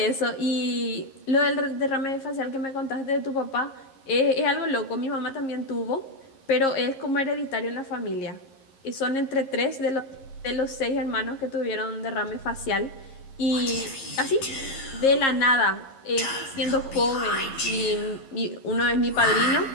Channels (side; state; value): right; late; 11 ms